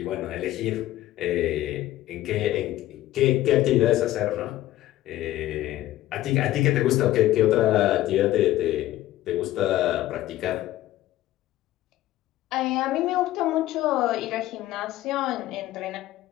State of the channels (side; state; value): right; quieter; 14.8 dB